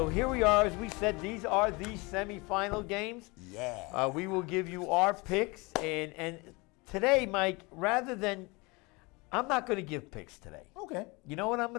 here we are. As we said, these are the semifinal games. Yeah. We will give you our picks. And today, Mike, rather than, I'm not going to give picks today. Okay. You know what I'm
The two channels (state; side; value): quieter; right; 26.2 dB